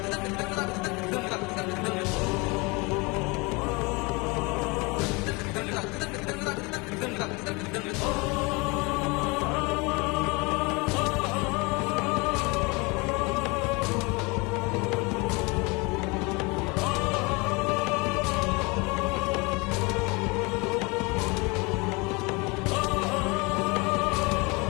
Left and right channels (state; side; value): quieter; right; 27.2 dB